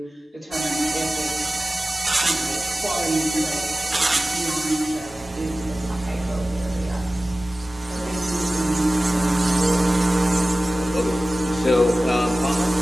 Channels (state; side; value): normal; both; correlation 0.96